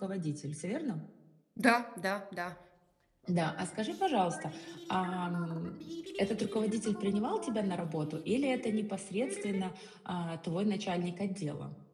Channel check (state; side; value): identical; both; correlation 1.00